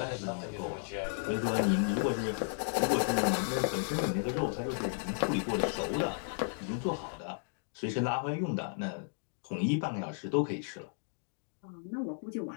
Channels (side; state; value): right; silent; digital silence